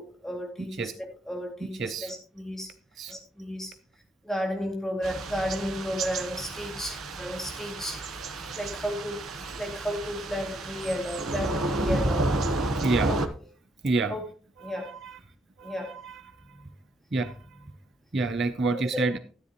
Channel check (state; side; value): normal; both; correlation 0.73